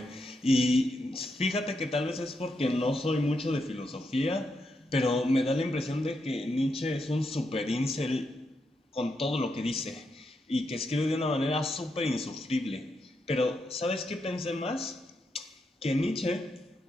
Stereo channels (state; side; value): normal; both; correlation 0.82